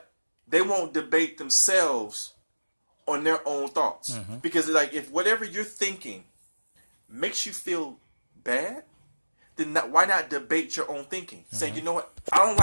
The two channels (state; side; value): inverted; both; correlation -1.00